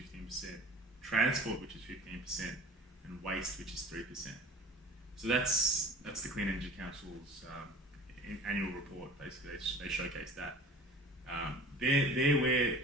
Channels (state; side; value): normal; both; correlation 0.42